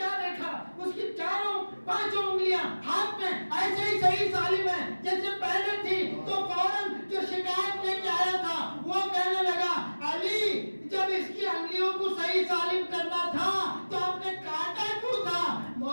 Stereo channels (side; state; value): both; inverted; correlation -1.00